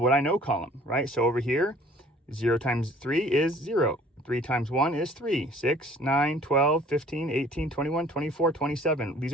I know column, right? So over here, 0 times 3 is 0. 3 times 1 is 3. 6, 9, 12, 15, 18, 21, 24, 27. These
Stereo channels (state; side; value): normal; both; correlation 0.53